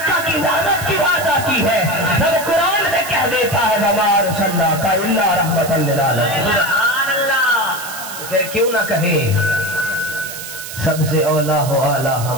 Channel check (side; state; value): right; noise; hiss, 10 dB below the sound